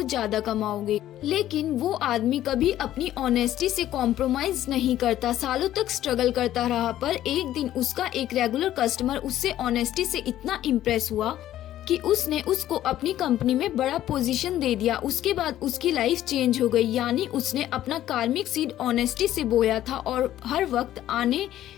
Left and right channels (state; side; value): quieter; right; 12.9 dB